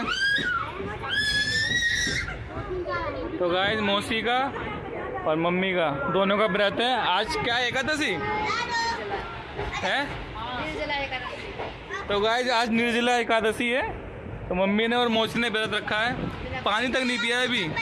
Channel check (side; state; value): both; identical; correlation 1.00